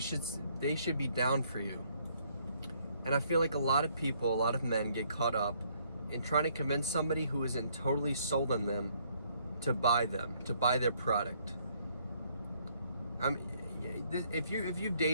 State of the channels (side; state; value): both; inverted; correlation -0.68